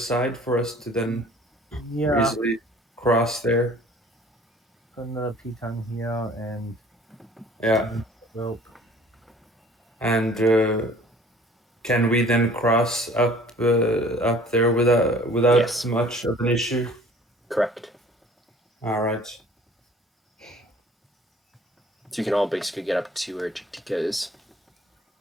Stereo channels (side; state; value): both; normal; correlation 0.51